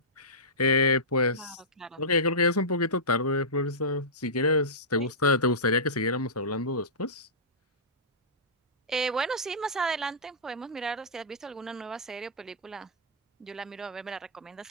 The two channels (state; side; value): normal; both; correlation -0.17